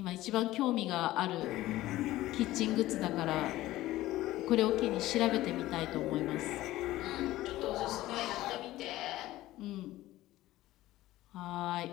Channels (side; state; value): right; quieter; 16.2 dB